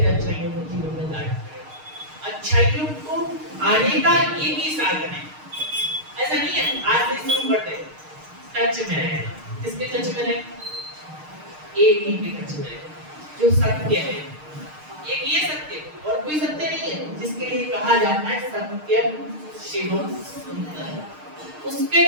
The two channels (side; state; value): left; late; 6.5 ms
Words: अच्छाइयों को जीवन में लाना पड़ेगा। अच्छाइयों को आने का एक ही साधन है। ऐसा नहीं है आज से शुरू करते हैं टच में रहना। किसके टच में रहे? एक ही के टच में रहे, जो सत्य है। एक ये सत्य और कोई सत्य नहीं है, जिसके लिए कहा जाता है सत्यम शिवम सुंदर। उसके